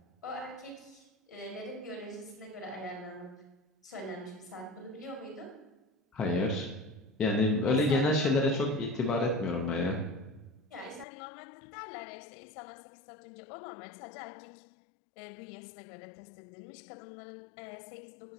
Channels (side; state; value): right; drops out; at 11.1 s